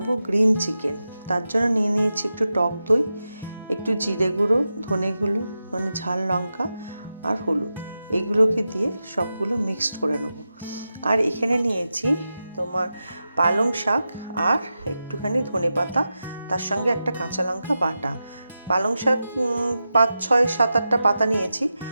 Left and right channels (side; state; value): both; inverted; correlation -0.91